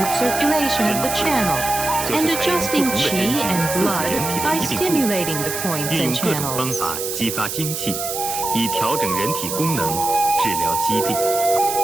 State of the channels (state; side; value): noise; right; hiss, 4 dB below the sound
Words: circulation of the channel, and adjusting qi and blood by stimulating the points 运用 and 各种方 channels. 法激发精气，以调整人体功能，治疗疾病。